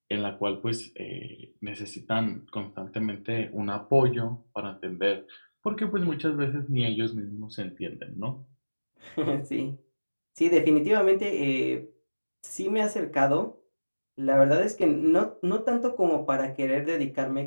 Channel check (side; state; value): both; inverted; correlation -1.00